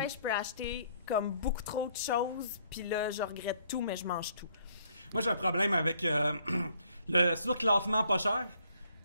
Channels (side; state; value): both; inverted; correlation -0.66